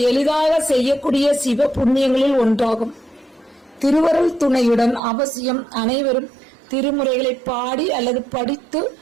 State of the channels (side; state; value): left; drops out; at 5.0 s